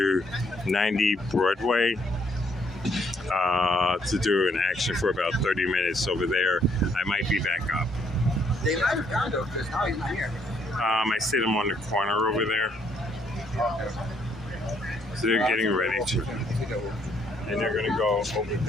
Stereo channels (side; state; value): both; normal; correlation 0.69